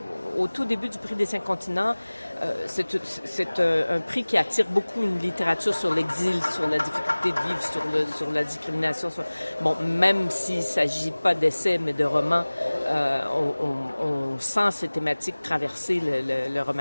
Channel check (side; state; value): both; inverted; correlation -1.00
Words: Au tout début du prix des 5 continents, c'est un prix qui attire beaucoup une littérature sur l'exil, sur la difficulté de vivre, sur la discrimination. Bon, même s'il ne s'agit pas d'essais, mais de romans, on sent ces thématiques traverser le